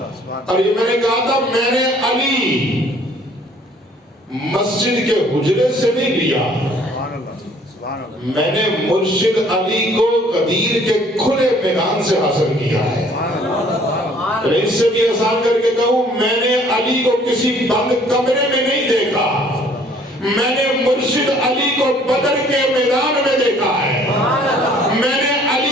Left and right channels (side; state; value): both; normal; correlation 0.58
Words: اور یہ میں نے کہا تھا میں نے علی مسجد کے حجرے سے نہیں لیا، میں نے مرشد علی کو غدیر کے کھلے میدان سے حاصل کیا ہے۔ اس سے بھی آسان کر کے کہوں، میں نے علی کو کسی بند کمرے میں نہیں دیکھا، میں نے مرشد علی کو بدر کے میدان میں دیکھا ہے۔ میں نے